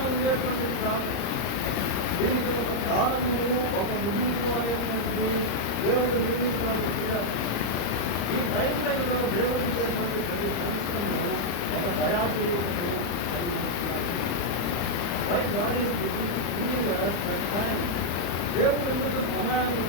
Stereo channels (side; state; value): right; late; 34 ms